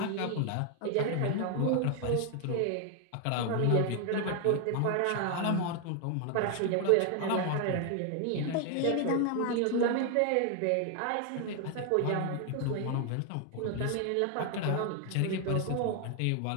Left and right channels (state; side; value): different; both; correlation 0.00